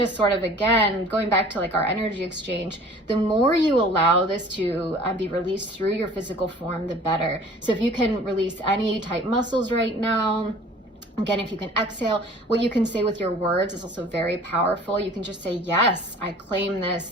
sort of, again, going back to like our energy exchange, the more you allow this to be released through your physical form, the better. So if you can release any tight muscles right now, again, if you can exhale, what you can say with your words is also very powerful. You can just say, yes, I claim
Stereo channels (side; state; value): both; normal; correlation 0.48